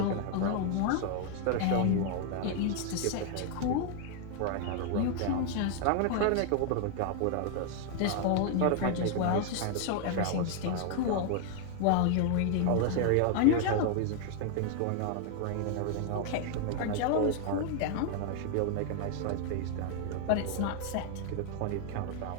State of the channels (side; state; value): both; different; correlation 0.00